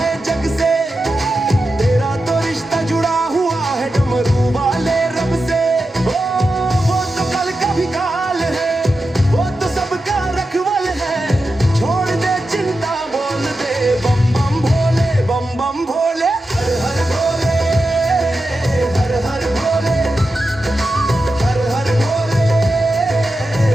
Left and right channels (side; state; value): both; normal; correlation 0.90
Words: जग से तेरा तो रिश्ता जुड़ा हुआ है डमरू वाले रब से ओ वो तो कल का भी काल है वो तो सबका रखवाल है छोड़ दे चिंता बोल दे बम बम भोले हर हर भोले